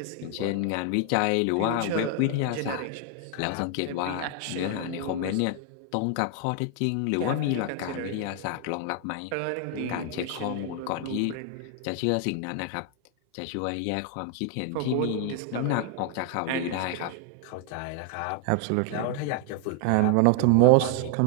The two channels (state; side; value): different; both; correlation 0.00